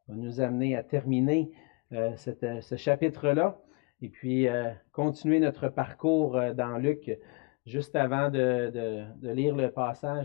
Ça va nous amener à terminer ce chapitre-là et puis continuer notre parcours dans Luc. Juste avant de lire le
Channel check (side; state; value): right; quieter; 28.4 dB